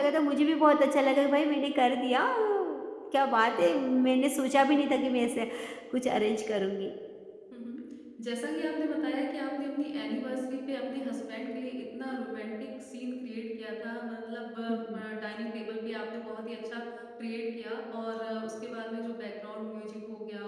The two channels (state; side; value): identical; both; correlation 1.00